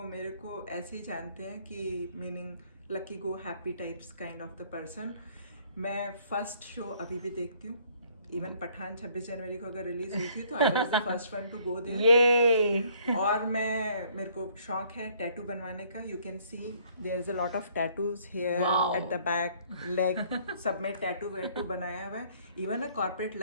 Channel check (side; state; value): both; inverted; correlation -0.62